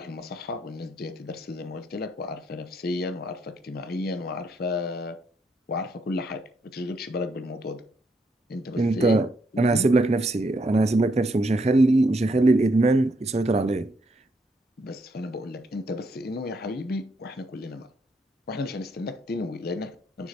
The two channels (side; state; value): both; normal; correlation 0.75